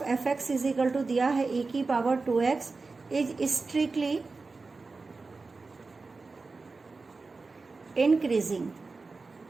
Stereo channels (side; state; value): left; quieter; 4.0 dB